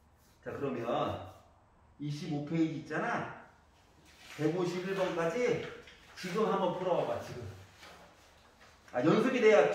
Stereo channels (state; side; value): identical; both; correlation 1.00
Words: 자, 그러면 25페이지 있잖아? 151번까지 지금 한번 풀어봐봐, 지금. 연습이 돼야